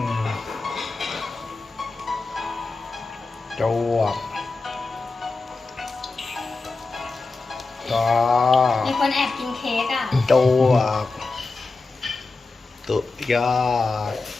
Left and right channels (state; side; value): quieter; right; 3.8 dB